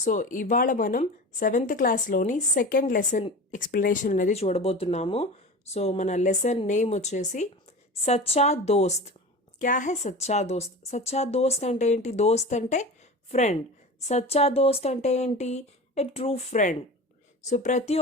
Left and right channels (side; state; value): both; normal; correlation 0.32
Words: So ఇవాళ మనం 7th క్లాస్లోని second lesson explanation అనేది చూడబోతున్నాము. So మన లెసన్ నేమ్ వచ్చేసి సచ్చా దోస్త్. క్యా హై సచ్చా దోస్త్? సచ్చా దోస్త్ అంటే ఏంటి? దోస్త్ అంటే ఫ్రెండ్. సచ్చా దోస్త్ అంటే ఏంటి? ఏ ట్రూ ఫ్రెండ్. సో ప్రతి